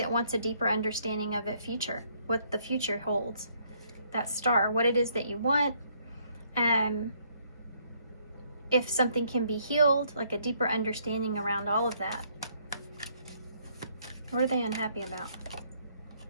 wants a deeper understanding of the future, what the future holds. That star, what it is that you want. If something can be healed, like a deeper understanding around all of that. What are they unhappy about?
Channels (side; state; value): both; inverted; correlation -0.68